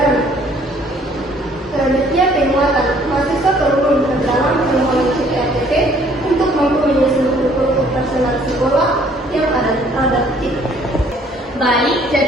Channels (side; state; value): both; normal; correlation 0.60